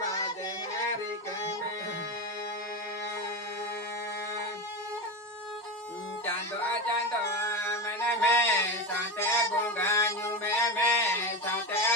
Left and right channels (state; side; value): normal; both; correlation 0.19